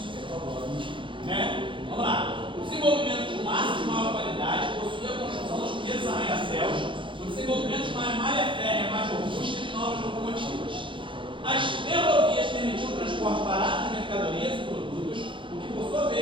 Né? Vamos lá. O desenvolvimento de um aço de maior qualidade possui a construção dos primeiros arranha-céus, o desenvolvimento de uma malha férrea mais robusta e de novas locomotivas. As ferrovias permitiam o transporte barato de mercadorias e produtos, o que por sua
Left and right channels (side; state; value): left; late; 0.24 ms